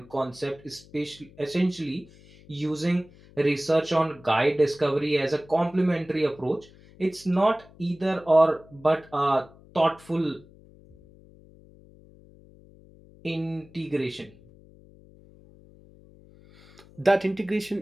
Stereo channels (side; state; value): left; noise; hum, 24 dB below the sound